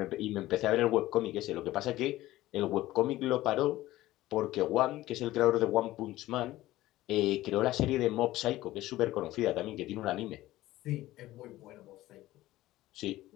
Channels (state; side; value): quieter; right; 16.2 dB